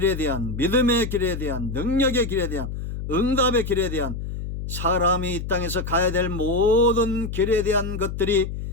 대한, 믿음의 길에 대한, 능력의 길에 대한, 응답의 길에 대한, 사람이 이 땅에서 가야 될 모든 길에 대한 것들이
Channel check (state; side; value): noise; left; hum, 6 dB below the sound